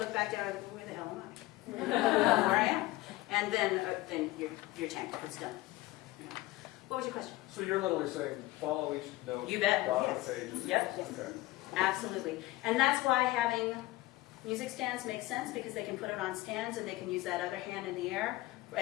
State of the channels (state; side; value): quieter; right; 18.5 dB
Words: back down and go, where the hell am I? Where I am. And then you're tanked, it's done. What was your question? So you're literally saying, follow each note. You bet. Dot Yes. the pages. Yep. Okay. Absolutely. And that's why having music stands makes sense, because they can put it on stands and they can use that other hand in the air.